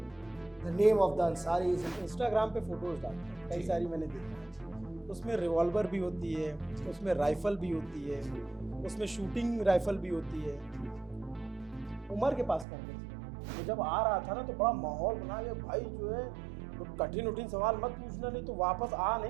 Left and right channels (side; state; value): left; drops out; at 12.7 s